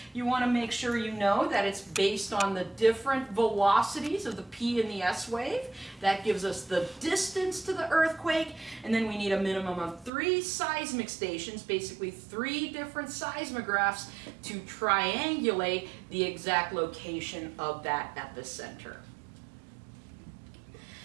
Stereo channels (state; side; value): drops out; left; at 10.1 s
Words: You want to make sure you know that it's based on the different velocities of the P and the S wave. That gives us the distance to the earthquake, and then we need a minimum of 3 seismic stations, basically 3 different seismographs, to triangulate the exact location of that epicenter.